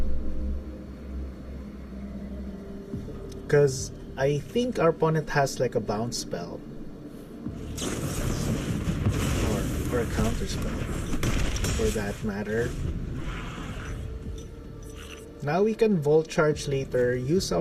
Because I think our opponent has like a bounce spell. Or a counter spell, for that matter. Now we can Volt Charge later, use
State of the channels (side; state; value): both; identical; correlation 1.00